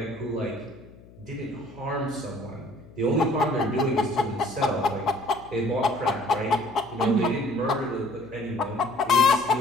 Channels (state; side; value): noise; left; hum, 22 dB below the sound